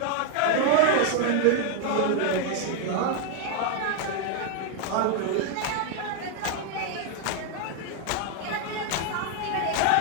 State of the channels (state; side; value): different; both; correlation 0.00